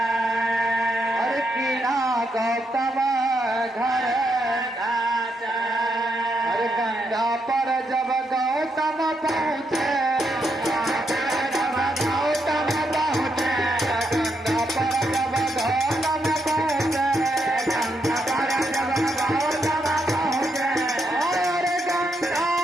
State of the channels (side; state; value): both; normal; correlation 0.80